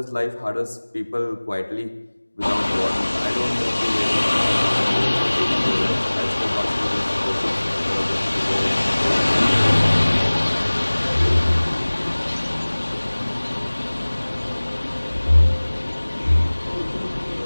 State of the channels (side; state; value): both; inverted; correlation -1.00